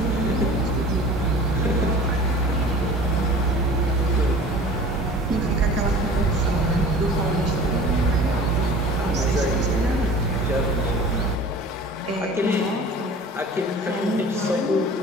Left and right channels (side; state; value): both; normal; correlation 0.43